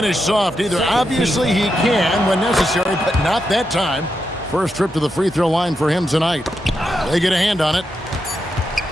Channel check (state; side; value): normal; both; correlation 0.85